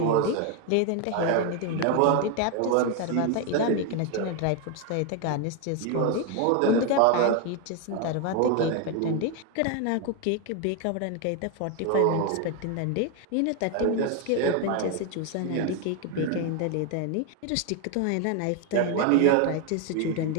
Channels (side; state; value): both; different; correlation 0.01